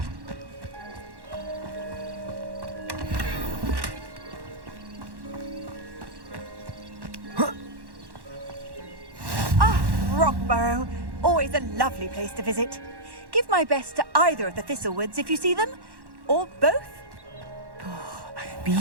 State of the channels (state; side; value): late; left; 1.1 ms